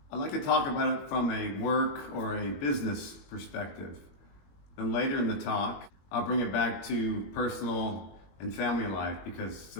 I'd like to talk about it from a work or a business perspective. Then later in the talk, I'll bring it back to personal and family life because the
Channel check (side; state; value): right; late; 21 ms